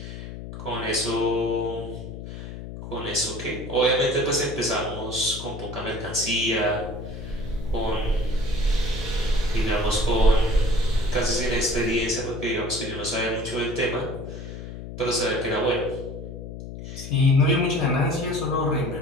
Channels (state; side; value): noise; left; hum, 10 dB below the sound